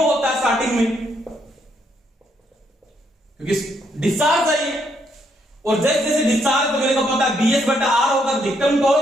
होता है स्टार्टिंग में, क्योंकि डिस्चार्ज है ये। और जैसे जैसे डिस्चार्ज तो मेरे को पता है BS बटा R होगा, अधिकतम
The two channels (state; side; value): normal; both; correlation 0.74